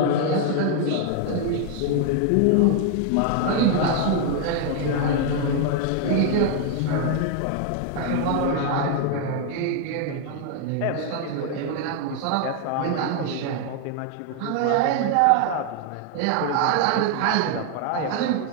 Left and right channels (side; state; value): both; different; correlation 0.00